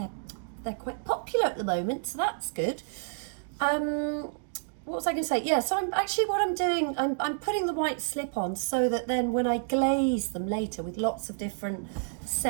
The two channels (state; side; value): silent; left; digital silence